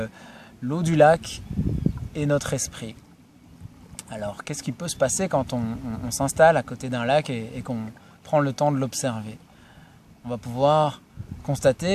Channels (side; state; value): both; identical; correlation 1.00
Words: l'eau du lac et notre esprit. Alors, qu'est-ce qui peut se passer quand on s'installe à côté d'un lac et qu'on prend le temps de l'observer? On va pouvoir